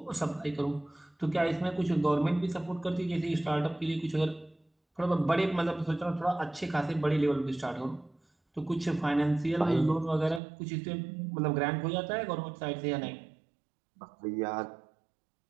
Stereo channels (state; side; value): drops out; left; at 10.4 s